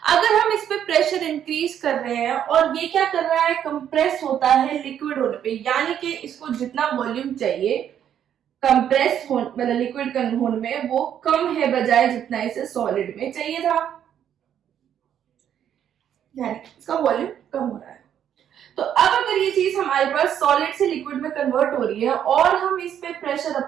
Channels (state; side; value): quieter; left; 9.6 dB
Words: अगर हम इस पे प्रेशर इंक्रीज कर रहे हैं और ये क्या कर रहा है, कंप्रेस होता है लिक्विड होने पे, यानी कि इसको जितना वॉल्यूम चाहिए कंप्रेस हो मतलब लिक्विड होने में वो कम है बजाय जितना इसे सॉलिड में चाहिए था, यानी इसका वॉल्यूम कम हो रहा है। तो अब अगर ये चीज हमारे पास सॉलिड से लिक्विड में कन्वर्ट हो रही है और हम इस पे प्रेशर